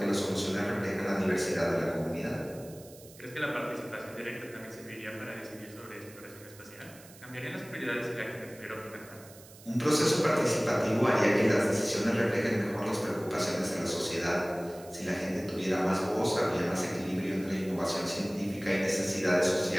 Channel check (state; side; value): noise; right; hiss, 21 dB below the sound